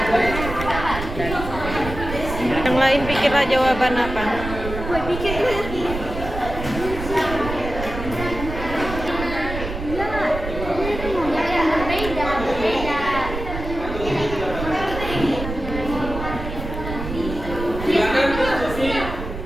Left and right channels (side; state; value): right; noise; rumble, 7 dB below the sound